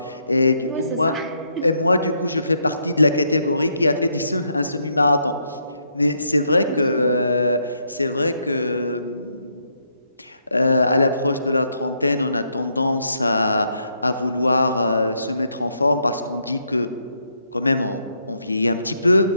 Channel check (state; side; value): inverted; both; correlation -0.76